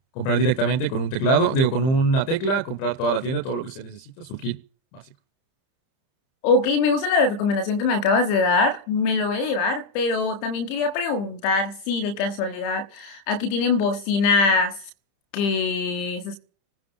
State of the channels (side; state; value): right; late; 30 ms